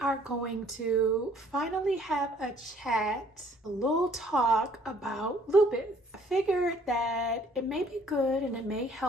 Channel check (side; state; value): both; normal; correlation 0.59